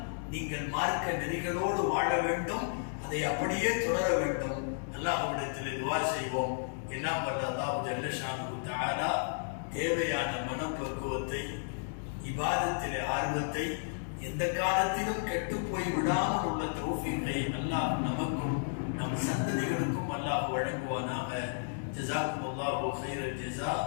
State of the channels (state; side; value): silent; right; digital silence